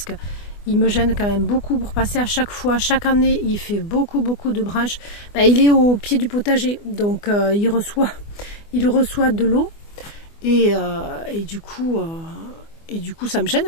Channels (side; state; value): right; late; 24 ms